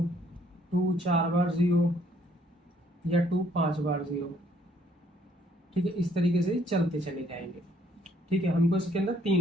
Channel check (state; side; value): normal; both; correlation 0.65